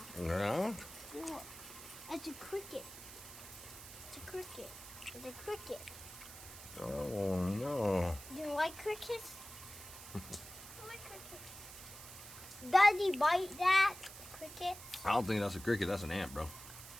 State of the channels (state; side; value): noise; right; hiss, 14 dB below the sound